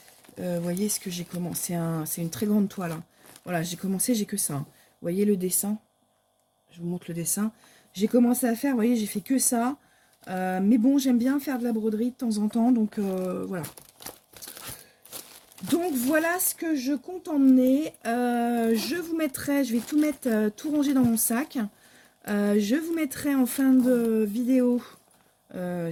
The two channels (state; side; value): identical; both; correlation 1.00